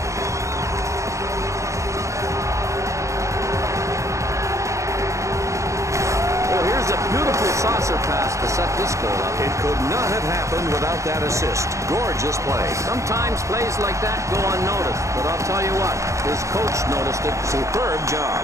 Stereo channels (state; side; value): late; left; 0.15 ms